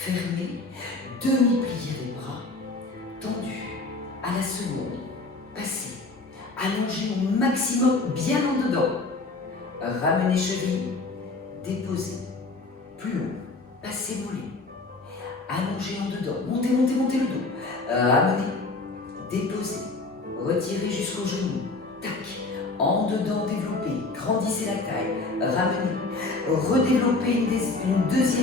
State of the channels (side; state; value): right; quieter; 3.4 dB